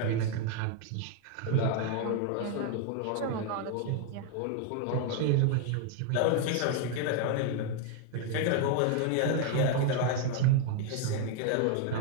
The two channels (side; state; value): both; different; correlation 0.00